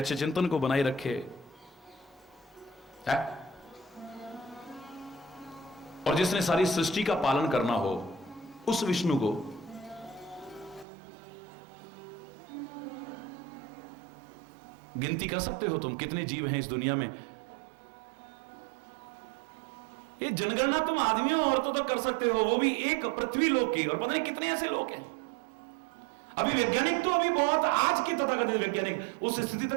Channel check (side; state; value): left; drops out; at 10.9 s